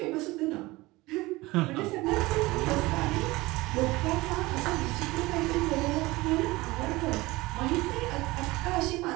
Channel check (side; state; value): left; quieter; 20.7 dB